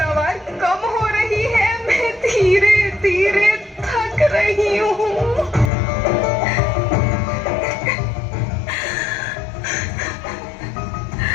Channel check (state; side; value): drops out; right; at 5.7 s